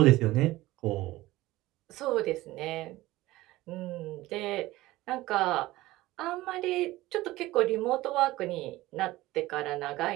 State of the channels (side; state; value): left; quieter; 17.8 dB